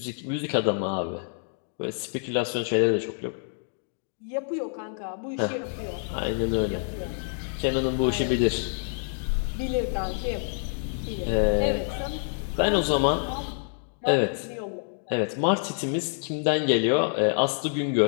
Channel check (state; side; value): silent; right; digital silence